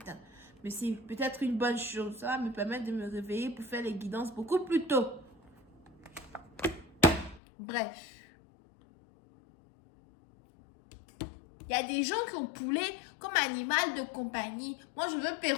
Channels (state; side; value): drops out; right; at 7.4 s